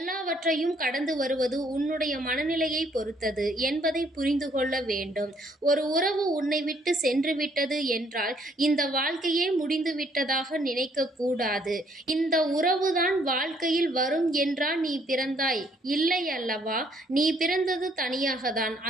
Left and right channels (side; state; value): both; normal; correlation 0.67